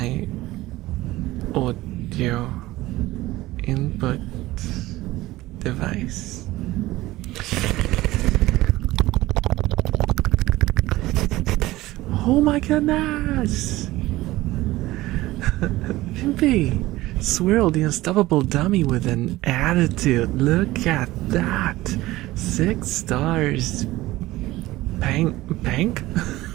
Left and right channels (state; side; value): quieter; left; 17.7 dB